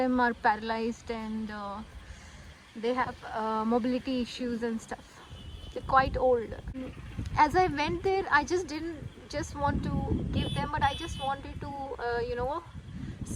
are paralyzed and they have mobility issues and stuff. They're quite old. As I went there, I just didn't just want to give them, but I just wanted to,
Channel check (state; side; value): identical; both; correlation 1.00